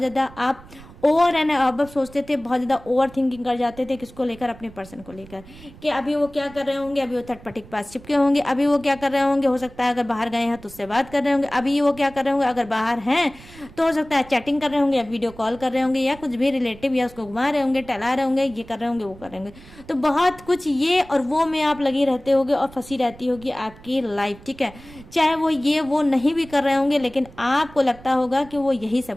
आप ओवर एंड अब सोचते थे, बहुत ज़्यादा ओवर थिंकिंग कर जाते थे। किसको लेकर? अपने पर्सन को लेकर, कि अभी वो क्या कर रहे होंगे, अभी वो थर्ड पार्टी के पास चिपके होंगे, अभी वो क्या कर रहे होंगे, हो सकता है अगर बाहर गए हैं तो उससे बात कर रहे होंगे, अभी वो क्या कर रहे होंगे, अगर बाहर हैं तो हो सकता है चैटिंग कर रहे होंगे या वीडियो कॉल कर रहे होंगे या कुछ भी रिलेटिव या उसको घुमा रहे होंगे, टहला रहे होंगे, ये कर रहे होंगे, वो कर रहे होंगे। तो बहुत कुछ ये और वो में आप लगी रहते होगे और फंसी रहती होगी आपकी लाइफ, ठीक है। चाहे वो ये वो नहीं भी कर रहे होंगे लेकिन आपको लगता होगा कि वो यही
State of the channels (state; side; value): noise; right; rumble, 20 dB below the sound